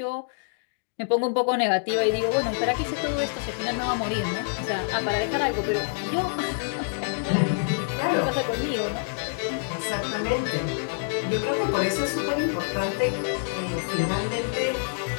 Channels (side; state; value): right; silent; digital silence